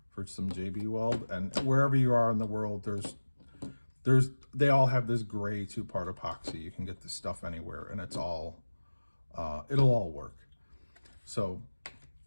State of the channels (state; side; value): inverted; both; correlation -1.00